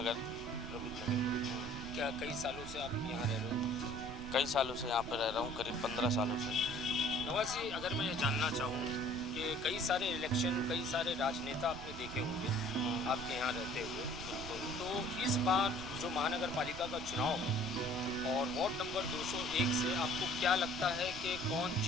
प्रबुद्ध नगर में। क्या कई सालों से आप यहाँ रह रहे हो? कई सालों से यहाँ पे रह रहा हूँ, करीब 15 सालों से। नवाज जी, अगर मैं ये जानना चाहूँ कि कई सारे इलेक्शन, कई सारे राजनेता आपने देखे होंगे आपके यहाँ रहते हुए, तो इस बार जो महानगर पालिका का चुनाव है और वार्ड नंबर 201 से आपको क्या लगता है कि कौन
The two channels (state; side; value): noise; right; rumble, 11 dB below the sound